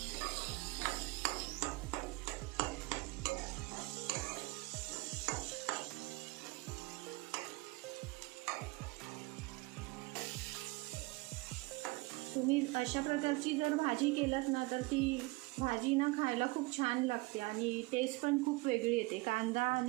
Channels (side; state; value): left; quieter; 24.3 dB